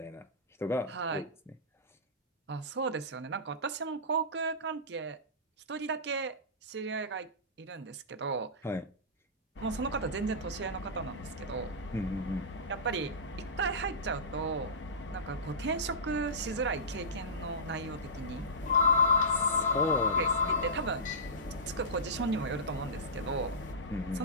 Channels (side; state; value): both; normal; correlation -0.19